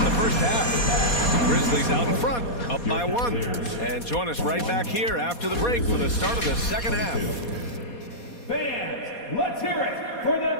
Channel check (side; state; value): right; late; 4.2 ms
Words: the first half. Grizzlies out in front, up by 1. And join us right back here after the break for the start of the second half. Fans, let's hear it for the